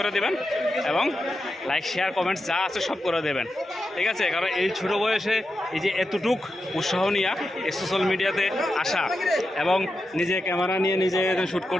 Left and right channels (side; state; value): both; normal; correlation 0.89